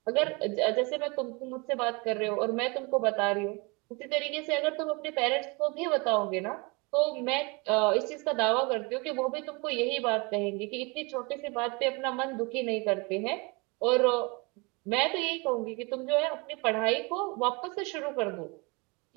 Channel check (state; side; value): quieter; left; 28.5 dB